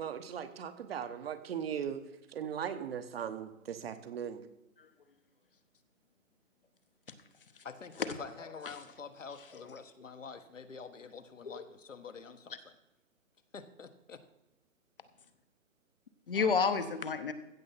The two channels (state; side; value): normal; both; correlation 0.23